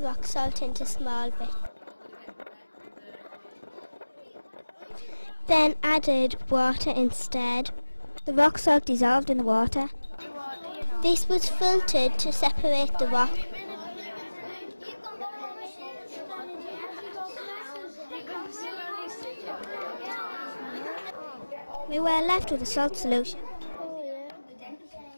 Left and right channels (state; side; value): inverted; both; correlation -1.00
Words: rock salt into small bits. Then added water instead. The rock salt dissolved in the water. This was filtered to separate the rock. We were left with a salt solution.